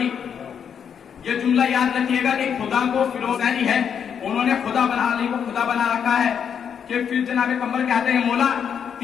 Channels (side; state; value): right; quieter; 7.7 dB